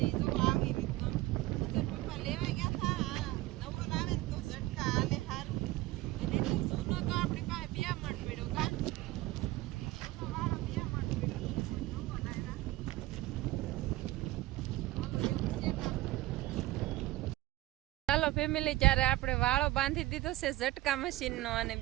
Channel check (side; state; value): left; quieter; 17.5 dB